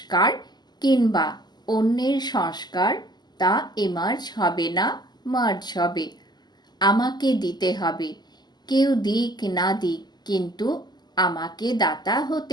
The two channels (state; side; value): late; right; 0.21 ms